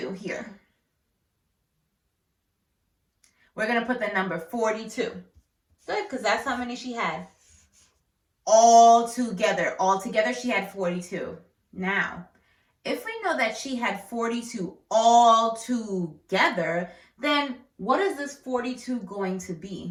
here? We're going to put the number 42. Good, because that's how many she had. All together she had 42. Now, if we know that she had 42 all together, then what is this 42 going to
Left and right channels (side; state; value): both; identical; correlation 1.00